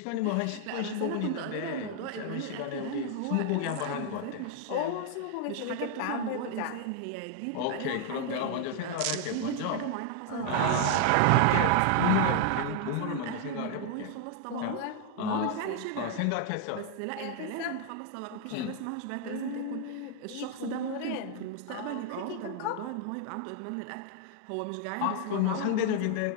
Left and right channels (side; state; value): both; different; correlation 0.00